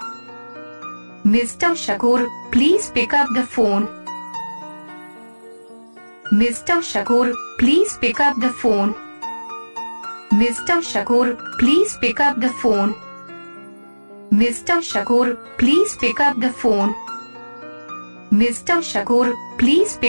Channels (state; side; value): inverted; both; correlation -1.00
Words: Mr. Shakoor, please pick up the phone. Mr. Shakoor, please pick up the phone. Mr. Shakoor, please pick up the phone. Mr. Shakoor, please pick up the phone. Mr. Shakoor, please